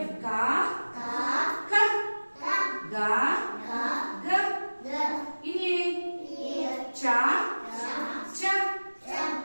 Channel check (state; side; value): inverted; both; correlation -1.00